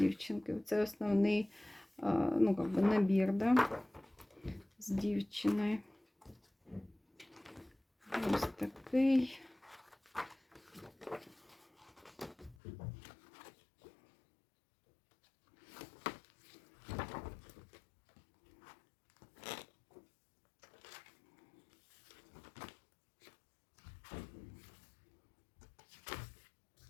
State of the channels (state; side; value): drops out; right; at 12.6 s